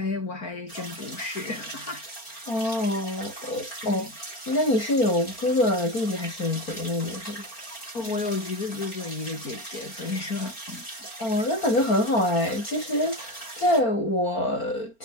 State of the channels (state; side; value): late; right; 4.4 ms